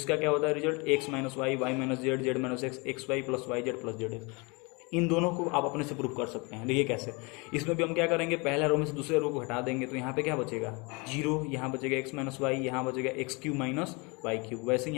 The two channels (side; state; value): right; quieter; 28.9 dB